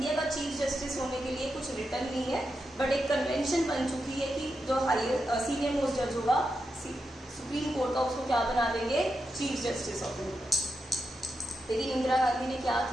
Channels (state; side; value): normal; both; correlation 0.86